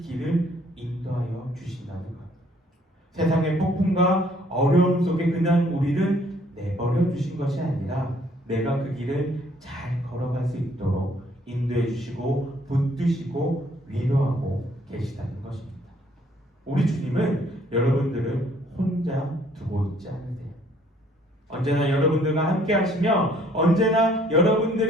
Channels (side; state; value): both; normal; correlation 0.63